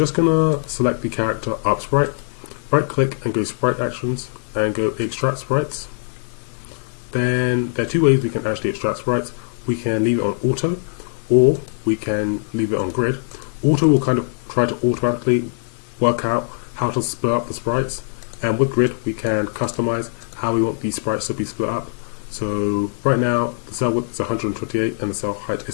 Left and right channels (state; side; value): silent; right; 65 dB below the other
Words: going to select the character up sprite, right click and go Sprite Actions and go Extract Sprites. And there are two ways we can actually extract sprites. We can leave it on auto, or we can leave it on grid. Auto will kind of try to automatically work out how to split up the sprites, and with grid we can customize how we want these sprites to be split up. So right now the cell width is 128 and the cell height